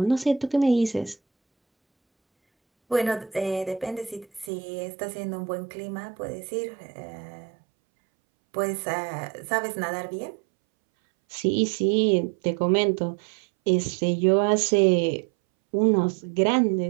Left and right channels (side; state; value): left; drops out; at 4.5 s